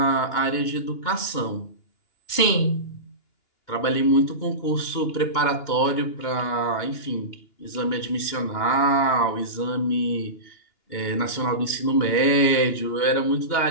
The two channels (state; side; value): late; right; 2.9 ms